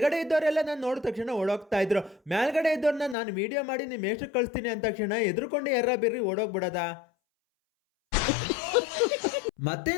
ಇದ್ದವರೆಲ್ಲ ನಾನು ನೋಡಿದ ತಕ್ಷಣ ಓಡೋಗ್ತಾ ಇದ್ರು. ಮೇಲ್ಗಡೆ ಇದ್ದವ್ರನ್ನ ನಾನು ವಿಡಿಯೋ ಮಾಡಿ ನಿಮ್ಮ ಎಷ್ಟು ಕಳಿಸ್ತೀನಿ ಅಂದ ತಕ್ಷಣ ಎದುರುಕೊಂಡು ಎರ್ರ ಬಿರ್ರಿ ಓಡೋಗ್ಬಿಡದ. ಮತ್ತೆ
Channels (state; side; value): drops out; right; at 3.2 s